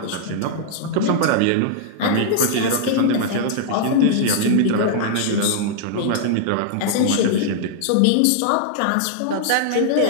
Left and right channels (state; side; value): different; both; correlation -0.01